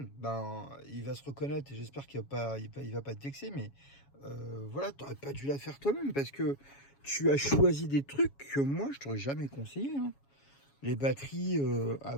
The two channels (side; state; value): right; late; 7.2 ms